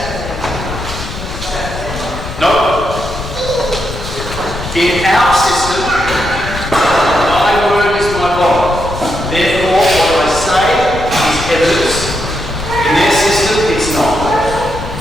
Nope. In our system, my word is my bond. Therefore, what I say is evidence. In their system, it's not.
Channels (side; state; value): left; noise; rumble, 9 dB below the sound